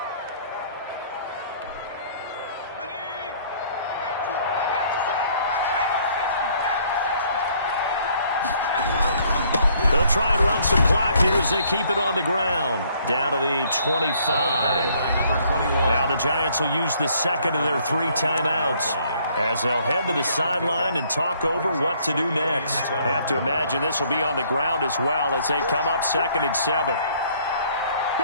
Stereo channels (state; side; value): inverted; both; correlation -0.63